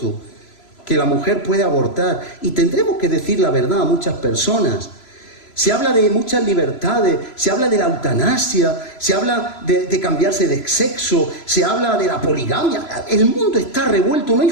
que la mujer puede abortar, y tendremos que decir la verdad a muchas personas. Se habla de muchas libertades, se habla de la eutanasia, se habla de cambiarse de sexo, se habla de la poligamia. El mundo está revuelto, no hay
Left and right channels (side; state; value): right; late; 3.0 ms